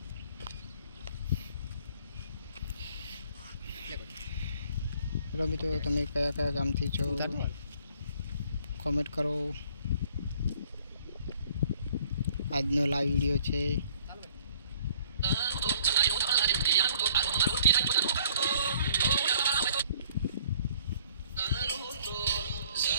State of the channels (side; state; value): both; inverted; correlation -0.59